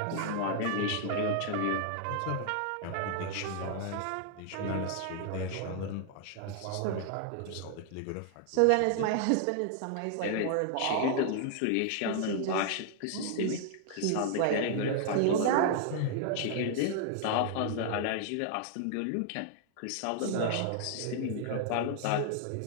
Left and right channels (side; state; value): both; different; correlation 0.00